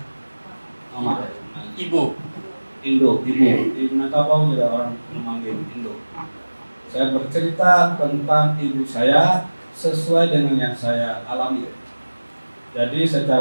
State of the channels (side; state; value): both; inverted; correlation -1.00